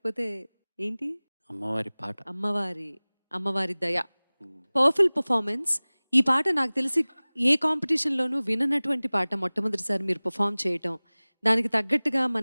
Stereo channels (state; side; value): inverted; both; correlation -1.00